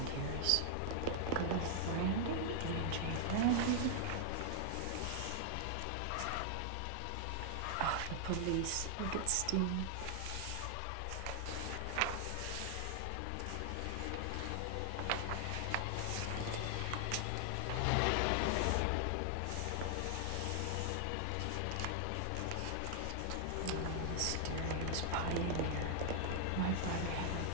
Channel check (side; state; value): both; different; correlation 0.00